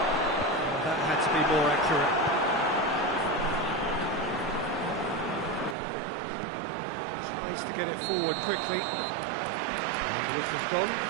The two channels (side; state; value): left; drops out; at 5.8 s